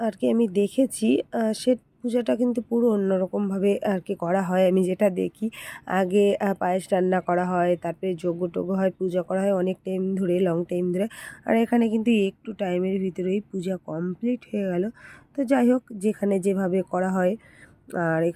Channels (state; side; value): identical; both; correlation 1.00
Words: আর কি আমি দেখেছি, সে পূজাটা কিন্তু পুরো অন্যরকমভাবে আর কি করা হয়। আমি যেটা দেখি, আগে পায়েস রান্না করা হয়, তারপরে যজ্ঞ-টজ্ঞ হয়, পূজা করা হয় অনেক টাইম ধরে, লং টাইম ধরে। আর এখানে কিন্তু একটু টাইমের ভিতরেই পূজা কমপ্লিট হয়ে গেল। তো যাই হোক, যেখানে যেভাবে করা হয়। আর